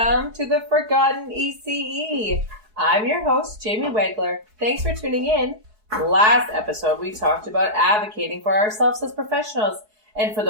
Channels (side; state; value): left; late; 4.7 ms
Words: to the Forgotten ECE. I'm your host, Jamie Wegler. Thanks for tuning in. Last episode, we talked about advocating for ourselves as professionals and for